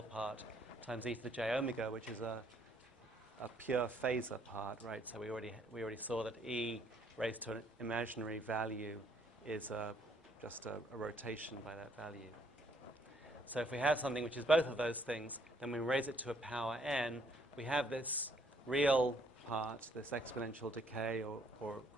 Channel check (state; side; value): normal; both; correlation 0.67